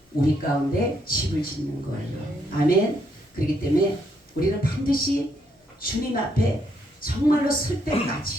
우리 가운데 집을 짓는 거예요. 아멘. 그렇기 때문에 우리는 반드시 주님 앞에 정말로 쓸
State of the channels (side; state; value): both; normal; correlation 0.74